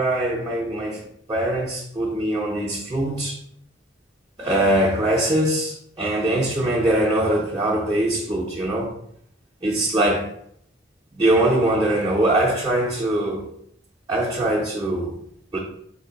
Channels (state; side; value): normal; both; correlation 0.49